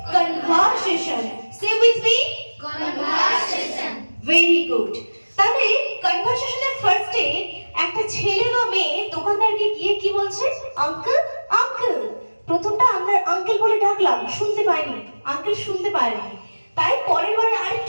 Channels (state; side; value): inverted; both; correlation -1.00